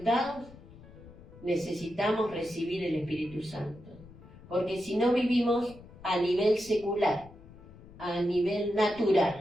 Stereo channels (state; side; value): noise; left; rumble, 20 dB below the sound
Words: Necesitamos recibir el Espíritu Santo. Porque si no vivimos a nivel secular, a nivel